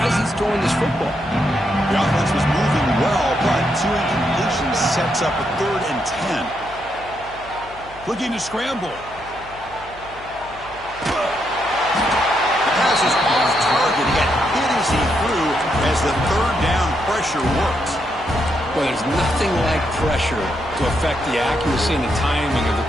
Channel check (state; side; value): noise; left; hum, 20 dB below the sound